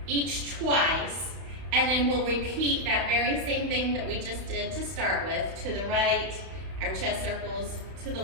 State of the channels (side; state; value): left; late; 31 ms